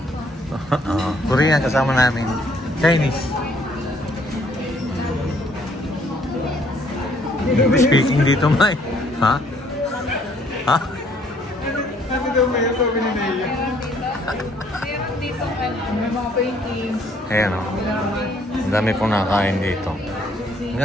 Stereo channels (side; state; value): both; normal; correlation 0.64